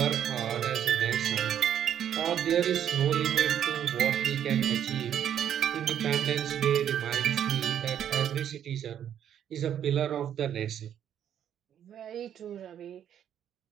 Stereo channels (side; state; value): left; quieter; 9.7 dB